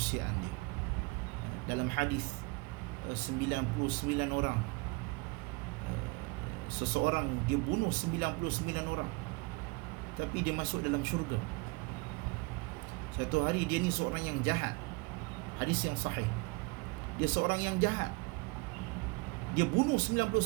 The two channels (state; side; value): quieter; left; 26.8 dB